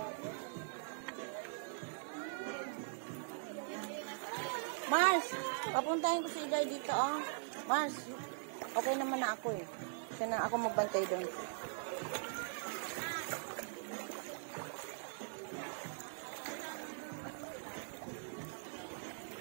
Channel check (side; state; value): left; silent; digital silence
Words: Mars, papuntahin ko si Igay dito, oh. Mars, okay naman na ako eh. Kasi na ako magbantay doon.